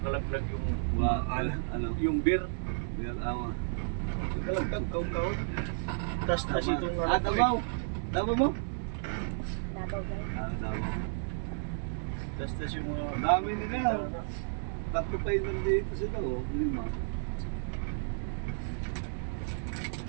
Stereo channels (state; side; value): silent; left; digital silence